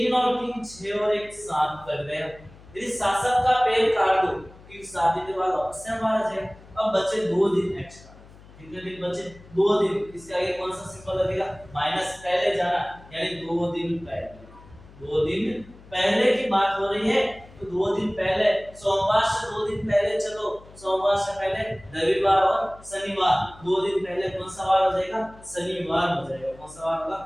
और 3 6 और 1 7 कर गए। यदि शासक का पेड़ काट दो, क्योंकि 7 दिन के बाद वापस से आ जाए। अब बचे 2 दिन एक्स्ट्रा, कितने दिन बचे? 2 दिन। इसके आगे कौन सा सिंबल लगेगा? माइनस पहले जाना, यानी 2 दिन पहले। 2 दिन पहले की बात हो रही है, तो 2 दिन पहले, सोमवार से 2 दिन पहले चलो, सोमवार से पहले रविवार और शनिवार, 2 दिन पहले कौन सा वार हो जाएगा? शनिवार हो जाएगा। कौन सा वार होगा?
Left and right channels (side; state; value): left; noise; hum, 22 dB below the sound